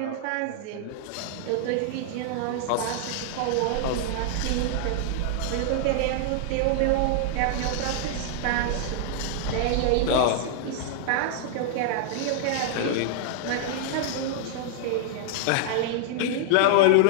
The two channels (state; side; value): different; both; correlation -0.01